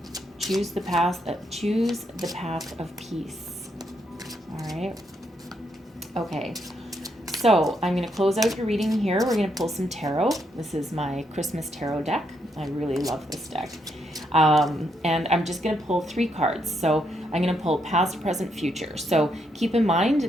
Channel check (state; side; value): normal; both; correlation 0.77